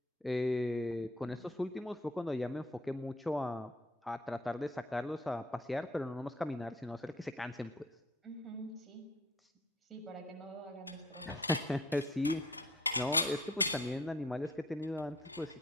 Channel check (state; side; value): normal; both; correlation 0.54